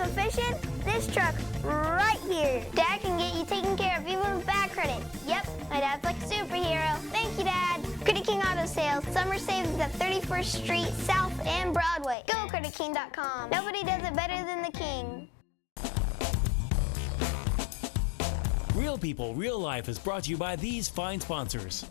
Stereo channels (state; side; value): drops out; right; at 12.2 s